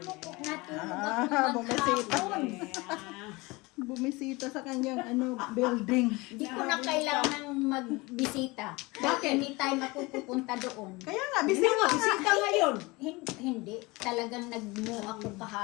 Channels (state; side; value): quieter; right; 23.7 dB